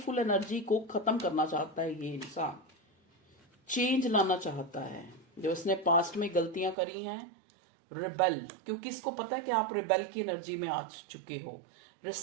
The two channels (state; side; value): drops out; left; at 6.8 s